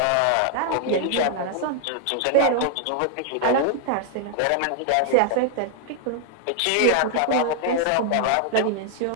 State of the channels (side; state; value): both; different; correlation 0.00